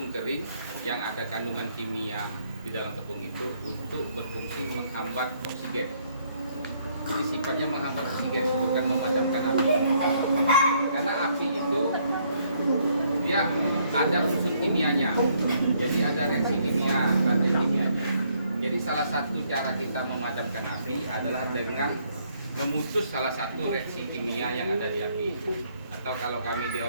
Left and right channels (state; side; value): inverted; both; correlation -0.68